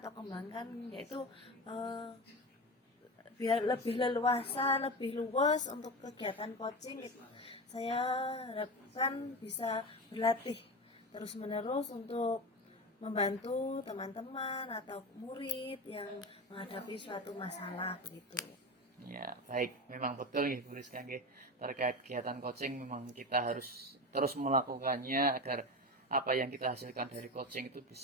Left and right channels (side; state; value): both; normal; correlation 0.24